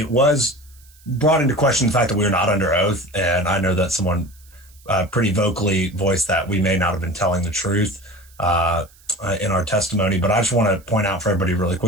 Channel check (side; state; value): right; noise; hiss, 28 dB below the sound